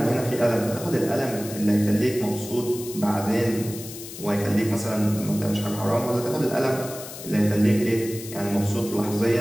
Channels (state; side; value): noise; left; hiss, 12 dB below the sound